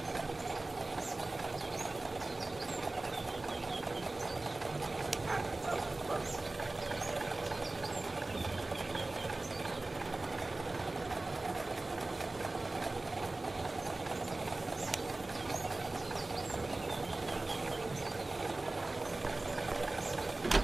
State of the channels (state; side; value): quieter; left; 3.0 dB